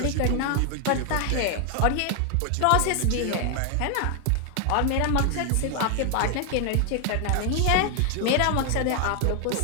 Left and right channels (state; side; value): different; both; correlation 0.00